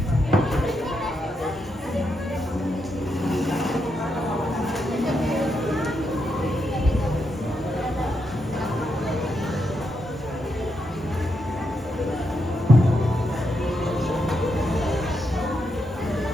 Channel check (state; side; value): normal; both; correlation 0.82